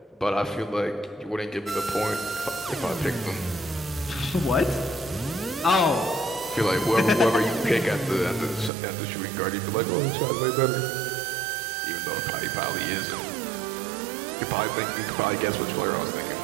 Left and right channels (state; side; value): drops out; left; at 8.7 s